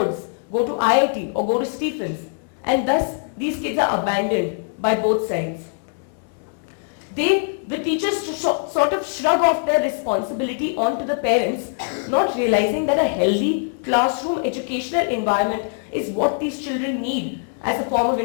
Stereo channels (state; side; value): silent; right; 64 dB below the other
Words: go to IIT or go to Stephens. And thus, these kids are abandoned by both sides. The teachers sort of shrug off their responsibility onto the parents, not realizing that a healthy classroom educational environment is what these children need as a form of